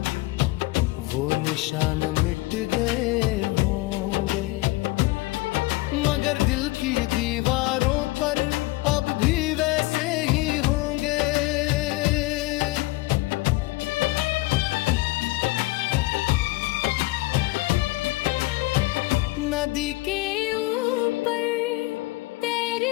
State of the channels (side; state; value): right; quieter; 20.6 dB